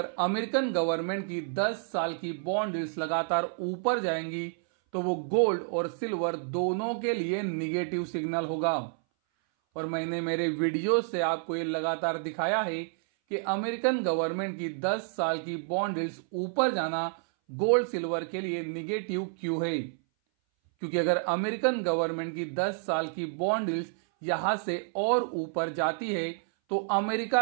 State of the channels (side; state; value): left; silent; 58 dB below the other